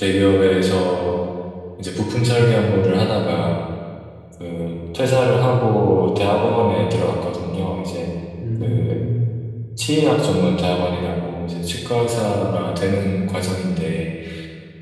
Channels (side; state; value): both; identical; correlation 1.00